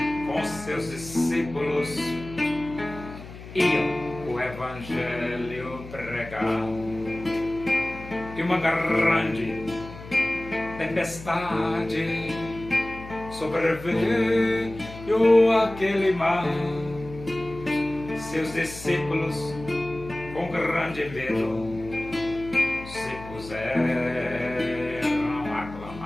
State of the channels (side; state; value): left; noise; hum, 14 dB below the sound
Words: com seus discípulos, iam o evangelho pregar. E uma grande tempestade sobreveio aquele mar. Seus discípulos, com grande medo, se puseram a